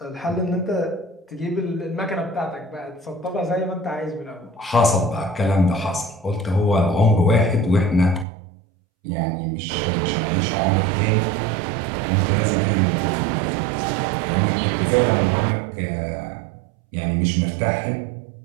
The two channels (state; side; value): drops out; left; at 8.2 s